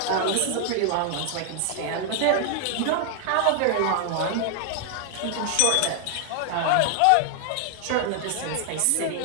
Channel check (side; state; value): both; different; correlation 0.00